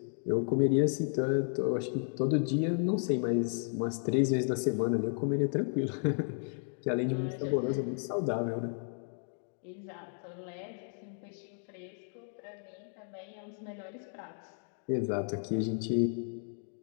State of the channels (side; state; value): right; silent; 56 dB below the other